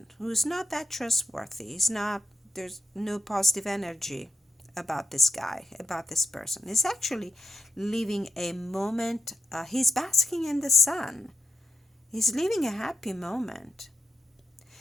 who's not that trustworthy, there's no positive energy about this guy, about this person. He's actually living a moment, he's basking in the sun. He's living a happy moment.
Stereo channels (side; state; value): both; normal; correlation 0.85